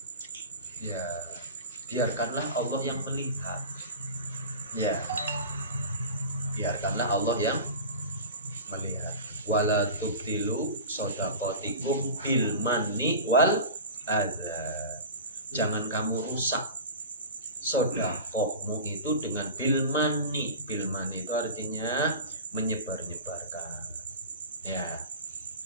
ya biarkanlah Allah yang melihat, ya biarkanlah Allah yang melihat. Wala tubtilu shadaqatikum bil manni wal adza. Jangan kamu rusak sedekahmu itu dengan bil mani. Bil mani itu artinya menyebar-nyebarkan, ya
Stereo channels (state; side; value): inverted; both; correlation -0.34